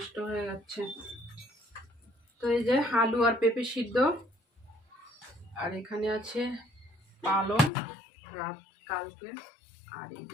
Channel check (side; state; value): right; drops out; at 7.7 s